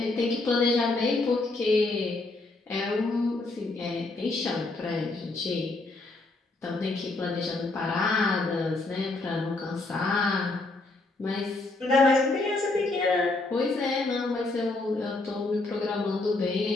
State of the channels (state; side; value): quieter; right; 3.2 dB